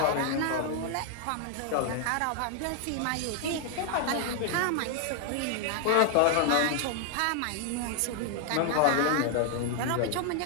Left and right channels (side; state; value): both; different; correlation 0.00